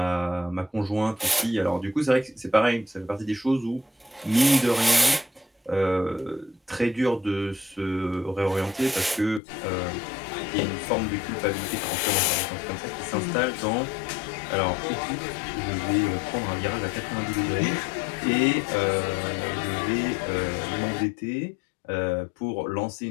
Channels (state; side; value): drops out; right; at 9.4 s